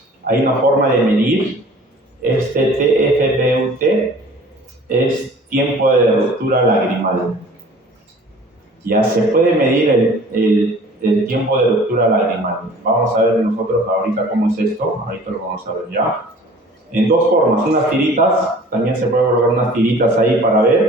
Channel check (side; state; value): both; normal; correlation 0.48